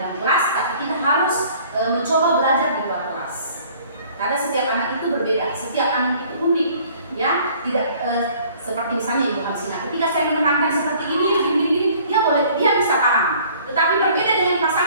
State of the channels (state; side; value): inverted; both; correlation -0.54